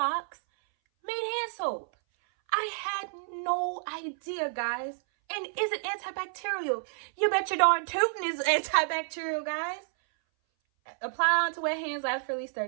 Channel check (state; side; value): silent; left; 58 dB below the other